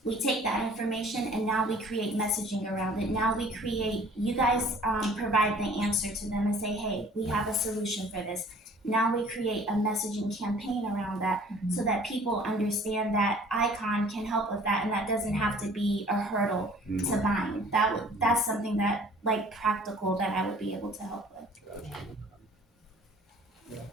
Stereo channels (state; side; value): normal; both; correlation 0.52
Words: We take that information and now we create messaging around it. Now we create, you guys provide the answer to them and say, hey, we have a solution for this. Now we create a messaging campaign around that so that people understand that Icon can help with that and that doesn't have to be a hurdle to buying. That's something that, like, practical that I would be able to help with.